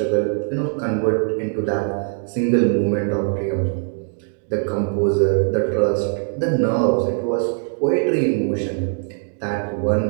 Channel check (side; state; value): left; silent; 65 dB below the other